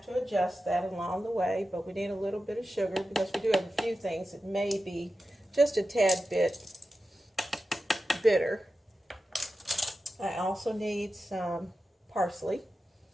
to adjust that along the way, but we need a little bit of sugar because we do have a few things that may be just a tad bit bitter. I also need some parsley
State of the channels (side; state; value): both; normal; correlation 0.92